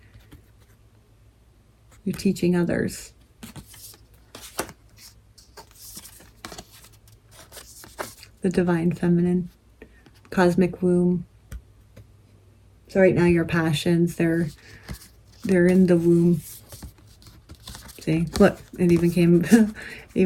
teaching others. the divine feminine, cosmic womb. So right now your passions, they're in the womb. See, look, it even came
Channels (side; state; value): both; identical; correlation 1.00